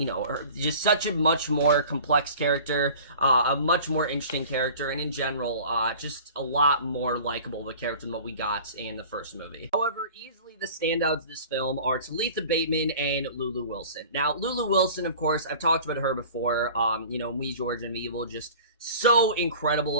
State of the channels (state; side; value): inverted; both; correlation -0.43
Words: just such a much more complex character, a much more interesting character, and in general, just a lot more likable of a character than what we got in the first movie. However, easily the standouts of this film are Talitha Bateman and Lulu Wilson. Now, Lulu Wilson, of course, I've talked about her before, Ouija Origin of Evil, just so